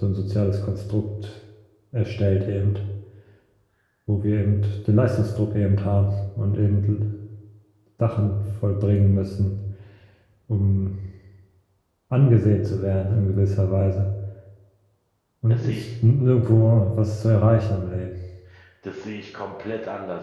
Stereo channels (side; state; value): both; identical; correlation 1.00